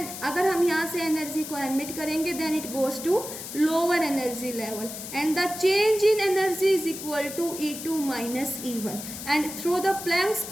अगर हम यहाँ से एनर्जी को एमिट करेंगे then it goes to lower energy level, and the change in energy is equal to E2 minus E1, and through the Planck's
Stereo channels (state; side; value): noise; left; hiss, 9 dB below the sound